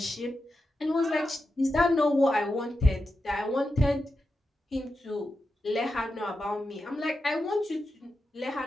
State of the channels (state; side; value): normal; both; correlation 0.89